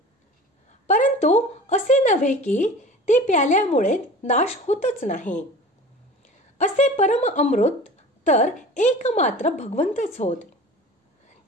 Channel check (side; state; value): both; normal; correlation 0.39